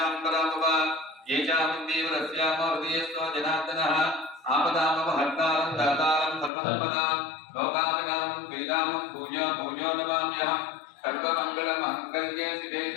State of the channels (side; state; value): right; drops out; at 6.5 s